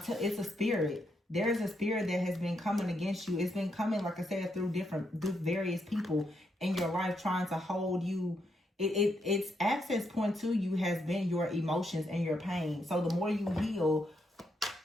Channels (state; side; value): normal; both; correlation 0.79